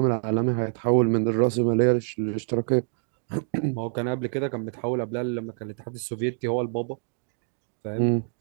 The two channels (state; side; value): silent; left; digital silence